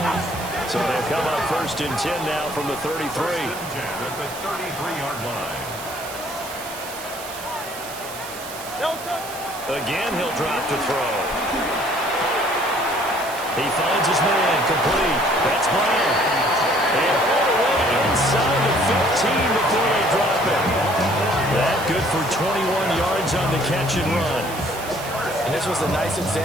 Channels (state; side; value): noise; right; hiss, 12 dB below the sound